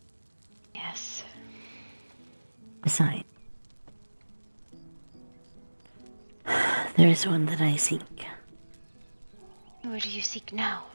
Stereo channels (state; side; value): inverted; both; correlation -1.00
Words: Yes. Besides, there is one that I seek. Where do you seek now?